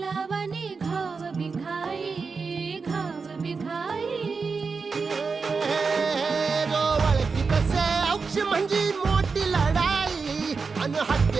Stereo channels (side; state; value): left; quieter; 4.8 dB